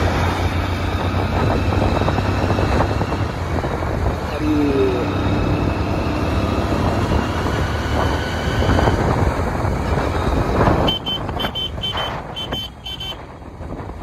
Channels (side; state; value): both; identical; correlation 1.00